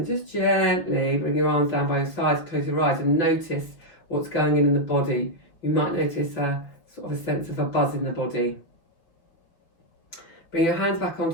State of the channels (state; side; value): late; right; 5.7 ms